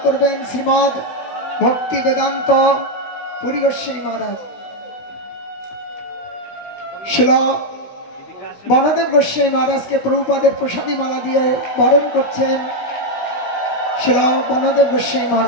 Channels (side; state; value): right; late; 16 ms